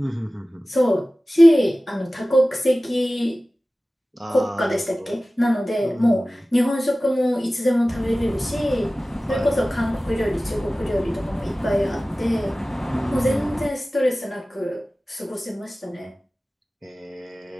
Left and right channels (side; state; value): both; normal; correlation 0.97